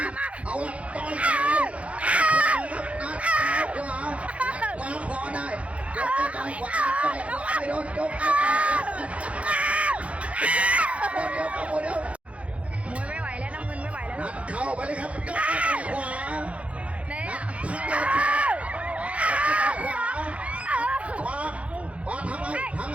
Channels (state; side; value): late; left; 0.063 ms